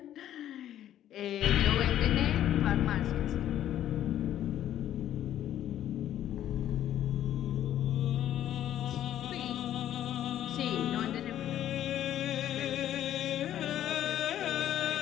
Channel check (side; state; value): right; quieter; 11.7 dB